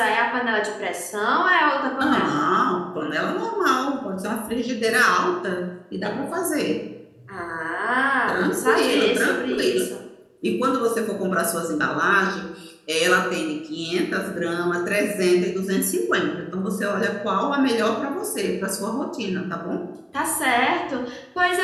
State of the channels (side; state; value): both; identical; correlation 1.00